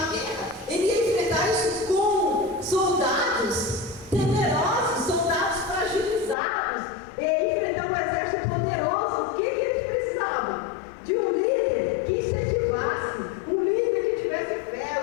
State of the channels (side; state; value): right; drops out; at 6.4 s